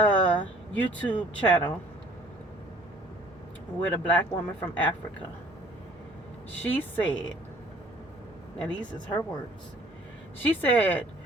YouTube channel with a black woman from Africa. She said, and these is her words, she said,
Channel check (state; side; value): normal; both; correlation 0.55